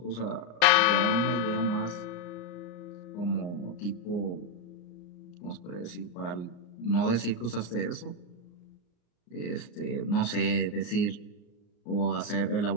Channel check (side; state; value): right; late; 34 ms